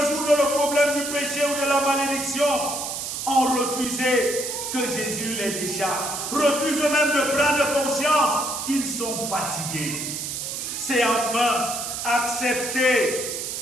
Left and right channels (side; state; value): right; noise; hiss, 4 dB below the sound